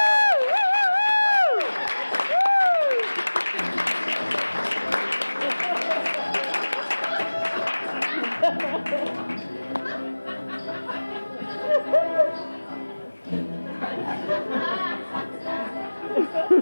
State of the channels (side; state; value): both; inverted; correlation -1.00